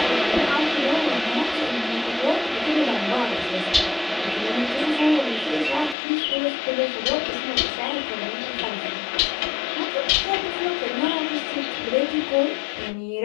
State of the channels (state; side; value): drops out; right; at 6.0 s